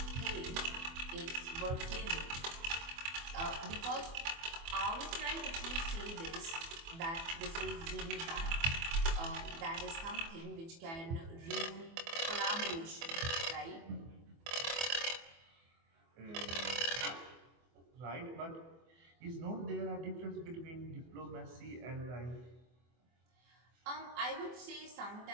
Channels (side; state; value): left; late; 24 ms